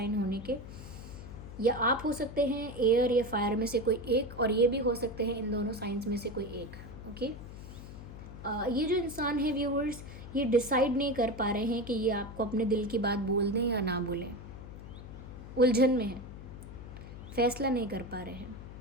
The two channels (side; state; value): left; noise; hum, 13 dB below the sound